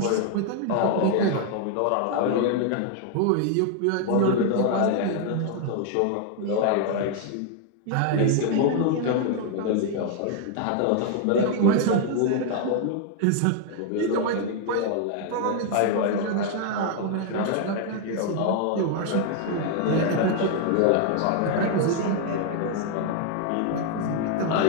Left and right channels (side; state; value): both; different; correlation 0.00